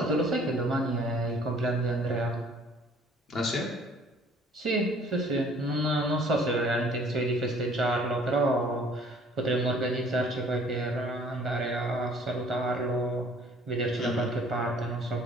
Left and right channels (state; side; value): normal; both; correlation 0.56